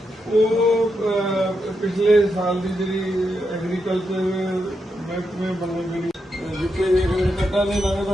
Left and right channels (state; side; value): normal; both; correlation 0.84